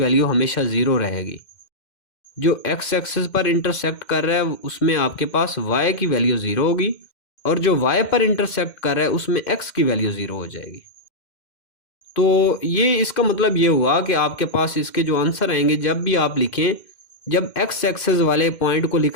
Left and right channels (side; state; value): right; late; 2.1 ms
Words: हमेशा 0 रहेगी। जो x एक्सिस पर इंटरसेक्ट कर रहा है उसमें आपके पास y की वैल्यू 0 होगी, और जो y पर इंटरसेक्ट कर रहा है उसमें x की वैल्यू 0 हो जाएगी। तो ये इसका मतलब ये हुआ कि आपके पास इसके जो आंसर आएंगे जब भी आप लिखें, जब एक्स एक्सेस वाले पॉइंट को